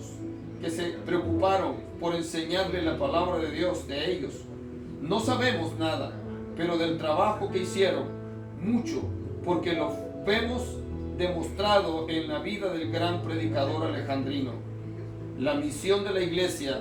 que se preocuparon por enseñarle la palabra de Dios de ellos. No sabemos nada, pero del trabajo que hicieron, mucho, porque lo vemos demostrado en la vida del gran predicador alejandrino. La misión de la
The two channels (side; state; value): both; identical; correlation 1.00